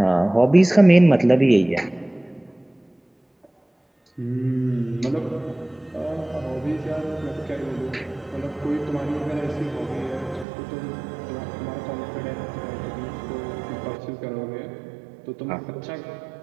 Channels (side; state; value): left; drops out; at 10.5 s